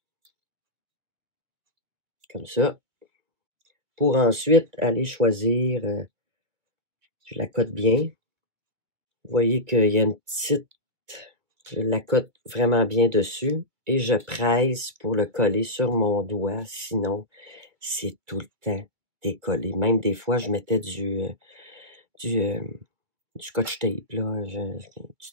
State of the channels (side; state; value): left; late; 2.2 ms